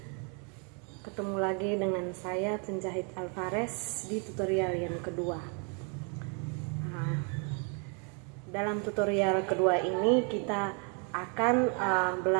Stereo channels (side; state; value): left; quieter; 37.7 dB